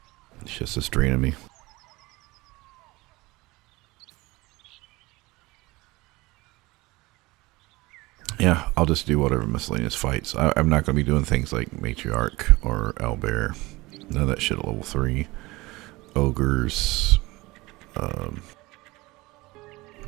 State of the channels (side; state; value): left; quieter; 21.5 dB